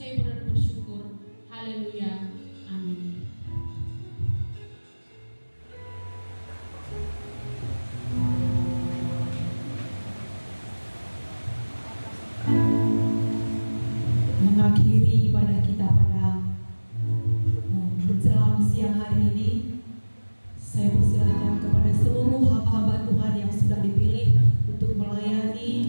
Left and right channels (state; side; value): inverted; both; correlation -1.00